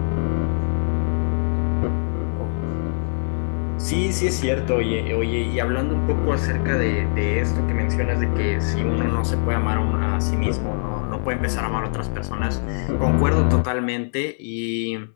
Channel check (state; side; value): silent; right; 64 dB below the other